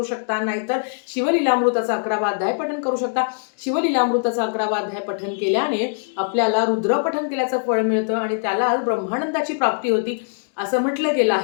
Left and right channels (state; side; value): silent; right; digital silence